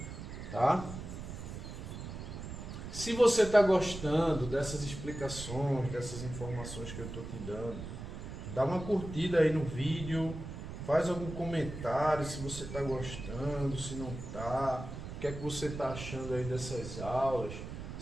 tá? Se você está gostando dessas explicações, dessas informações que eu estou te dando, dá uma curtida aí no vídeo, faz algum comentário se você está gostando, se não está, o que é que você está achando aí dessas aulas,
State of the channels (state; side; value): noise; right; rumble, 9 dB below the sound